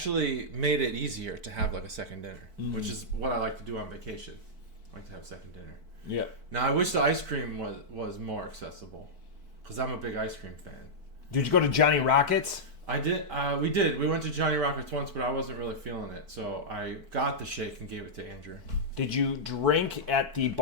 made it easier to have like a second dinner, which is what I like to do on vacation. I like to have second dinner. Yeah. Now I wish the ice cream was more accessible, because I'm a big ice cream fan. Did you go to Johnny Rockets? I did. We did. We went to Johnny Rockets once, but I wasn't really feeling it, so I got the shake and gave it to Andrew. Did you drink at the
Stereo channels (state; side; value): late; left; 4.5 ms